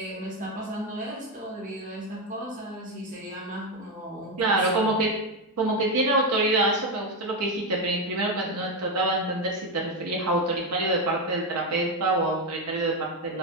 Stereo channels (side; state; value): both; normal; correlation 0.09